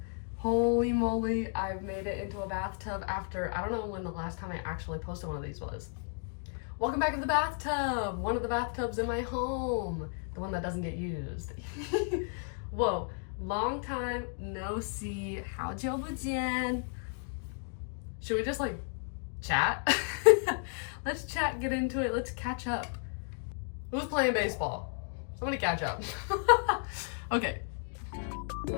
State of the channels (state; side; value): silent; right; 56 dB below the other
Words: Holy moly, I've made it into a bathtub after, I don't know when the last time I actually posted one of these was. Welcome back to the bathtub. One of the bathtubs in my home. The one that doesn't get used. Whoa, long time no see. 好久不见. Should we just like chat? Let's chat, get into it. Let's catch up. Who's playing baseball? Somebody catch up. Okay.